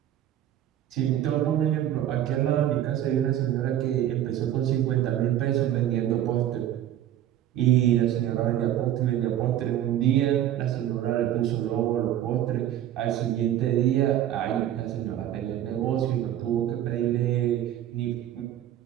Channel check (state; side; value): quieter; left; 11.8 dB